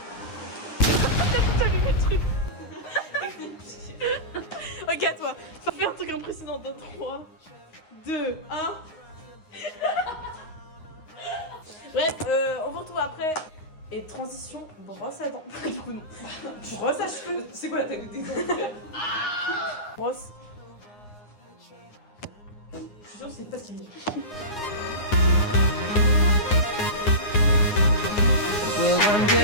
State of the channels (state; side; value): late; right; 9.6 ms